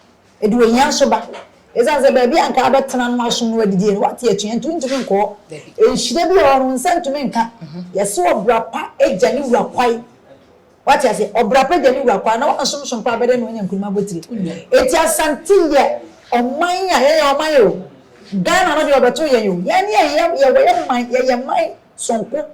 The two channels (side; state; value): both; identical; correlation 1.00